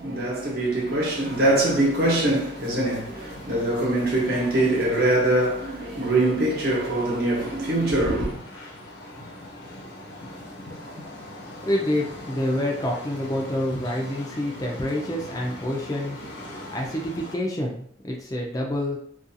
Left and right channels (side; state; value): both; normal; correlation 0.49